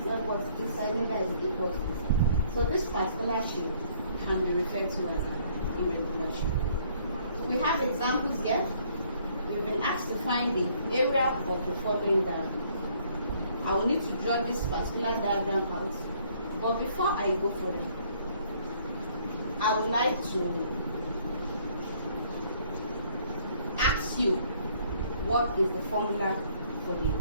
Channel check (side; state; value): both; inverted; correlation -0.63